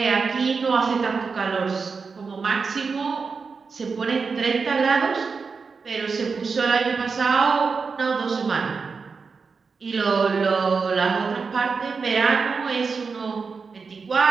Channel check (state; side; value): quieter; left; 5.0 dB